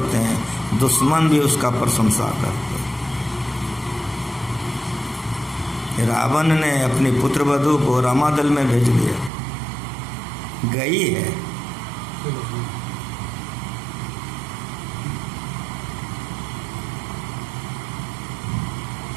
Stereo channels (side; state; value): left; drops out; at 9.3 s